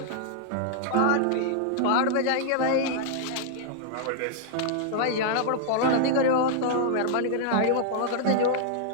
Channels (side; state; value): both; different; correlation -0.01